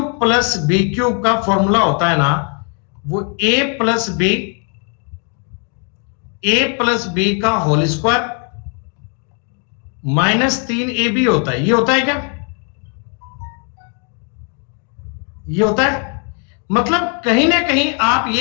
plus B cube का फॉर्मूला होता है ना, वो ए प्लस बी का होल स्क्वायर माइनस 3ab होता है। ये होता है क्या? ये होता है, मतलब कहीं ना कहीं आप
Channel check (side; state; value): right; quieter; 38.4 dB